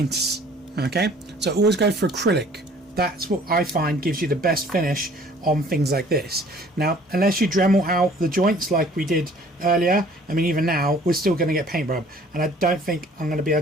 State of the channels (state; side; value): normal; both; correlation 0.54